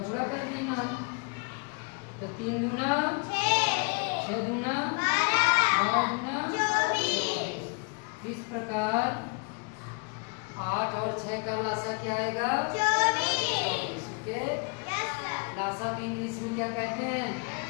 कर देना। तो 3 दूना 6 दूना 12 दूना 24। इस प्रकार 8 और 6 का लासा क्या आएगा? 24। ओके, लासा को इंग्लिश में क्या कहते हैं?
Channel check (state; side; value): quieter; right; 34.2 dB